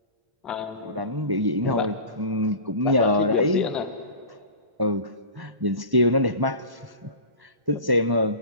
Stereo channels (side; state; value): left; late; 1.1 ms